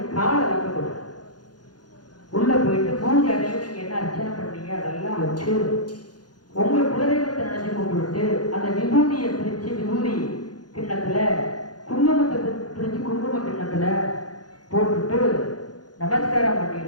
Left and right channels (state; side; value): late; right; 0.69 ms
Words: காலை வைக்கக்கூடாது. உள்ள போயிட்டு பூஜை அறையில் நீங்க என்ன அர்ச்சனை பண்ணீங்க அதெல்லாம் வச்சு உங்க குலதெய்வத்தை நினைச்சு கும்பிட்டு அந்த விபூதியை பிரிச்சு விபூதி கிண்ணத்துல குங்குமத்தை பிரிச்சு குங்கும கிண்ணத்துல போட்டுட்டு நமஸ்காரம்